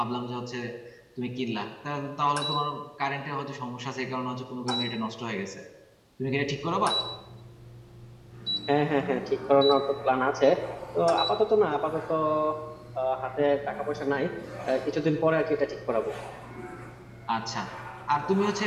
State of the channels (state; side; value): identical; both; correlation 1.00